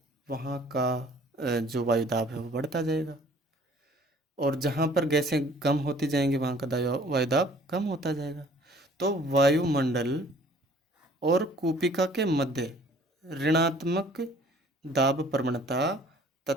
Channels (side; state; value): both; normal; correlation 0.54